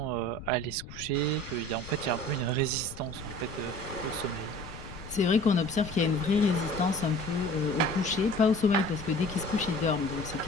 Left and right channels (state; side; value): noise; left; rumble, 14 dB below the sound